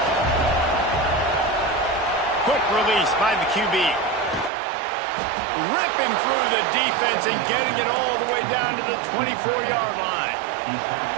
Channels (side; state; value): left; drops out; at 4.5 s